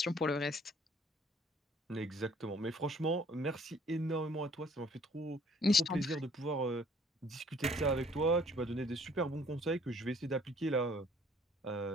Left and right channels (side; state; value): both; normal; correlation 0.58